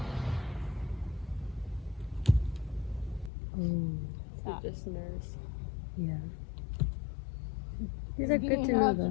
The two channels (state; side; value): drops out; right; at 3.3 s